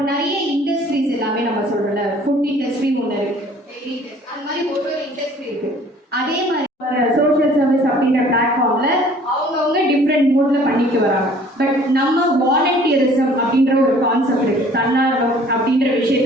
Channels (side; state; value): both; normal; correlation 0.53